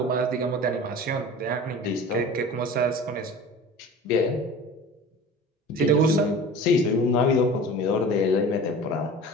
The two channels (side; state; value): both; normal; correlation 0.38